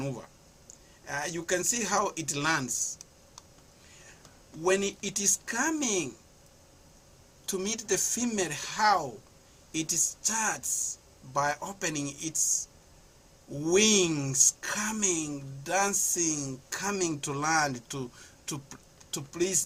You can see how it lands. When it is coming to meet the female, how it starts by opening its wings, coming, dancing, coming to land to please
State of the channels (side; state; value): both; identical; correlation 1.00